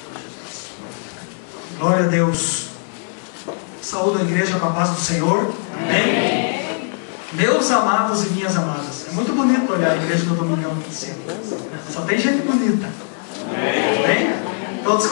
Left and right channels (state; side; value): silent; right; 57 dB below the other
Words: Glória a Deus. Saúde a igreja com a paz do Senhor. Amém. Meus amados e minhas amadas. É muito bonito olhar a igreja do Domingão aqui em cima. Só tem gente bonita. Amém? Todos